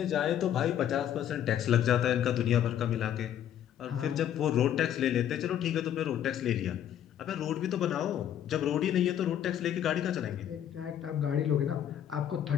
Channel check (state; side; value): quieter; right; 10.3 dB